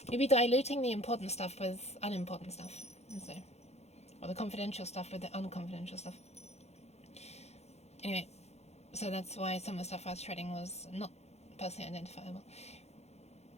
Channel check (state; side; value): late; right; 0.31 ms